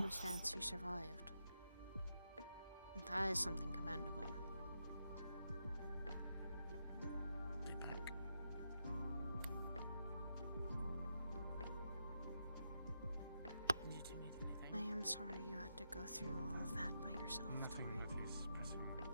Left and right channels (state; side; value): inverted; both; correlation -0.84